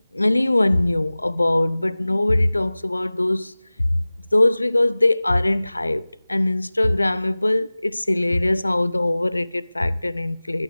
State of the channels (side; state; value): both; inverted; correlation -0.99